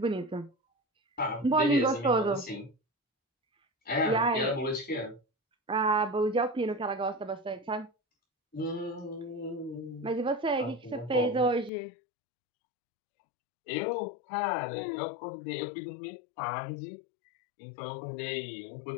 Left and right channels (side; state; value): right; drops out; at 11.7 s